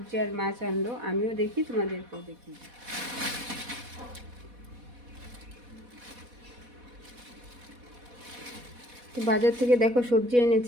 আর মাছ আনলো, আমিও দেখি, তোমাদেরকেও দেখি। তো বাজার থেকে দেখো সবজি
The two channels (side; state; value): left; late; 4.1 ms